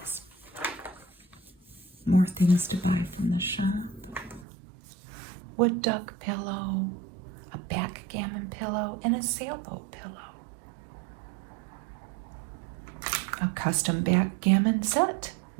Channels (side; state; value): left; drops out; at 4.5 s